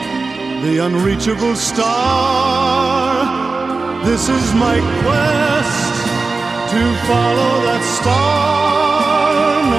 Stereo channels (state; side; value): quieter; left; 3.9 dB